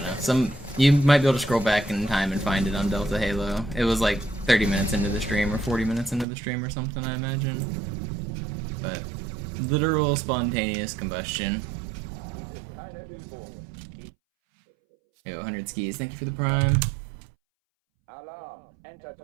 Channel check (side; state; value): left; drops out; at 6.2 s